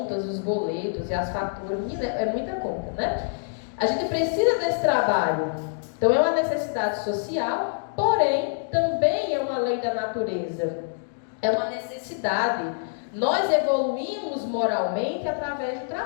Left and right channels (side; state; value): right; silent; digital silence